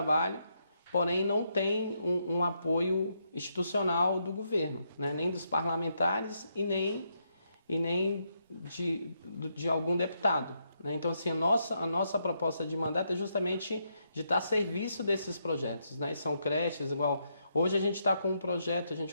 porém não tem um apoio institucional do governo, né, nem dos parlamentares e nem de algum deputado, né? Então, assim, a nossa proposta de mandato é justamente de estar a serviço desses projetos, né? São creches, igual... Hoje a gente está com um projeto, a gente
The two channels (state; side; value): inverted; both; correlation -0.79